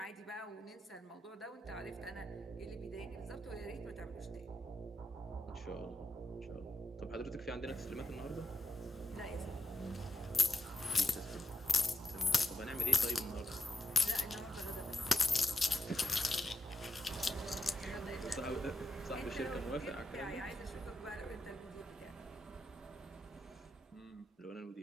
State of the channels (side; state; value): both; normal; correlation 0.86